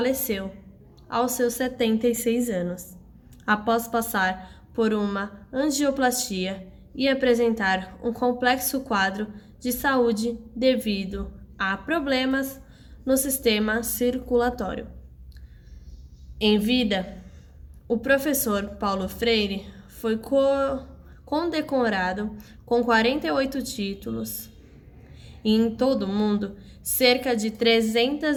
aos seus 76 anos, após passar por uma angioplastia e apresentar um complexo quadro de saúde devido a problemas no sistema circulatório. Em vida, o professor Paulo Freire foi condecorado com 48 títulos e em todo o mundo, cerca de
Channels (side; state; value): both; identical; correlation 1.00